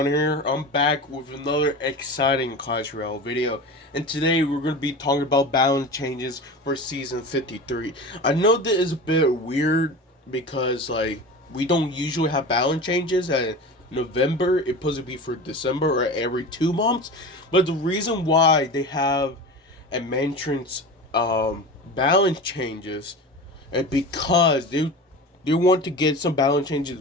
here. I'm back with another exciting Clash Royale video, and today we're going to be talking about balance changes for Season 53. I know that is a bit weird because we don't usually have balance changes at November. It's supposed to be for December or every 2 months, but the reason why they have a maintenance balance changes is because they want to get some balance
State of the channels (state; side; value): normal; both; correlation 0.31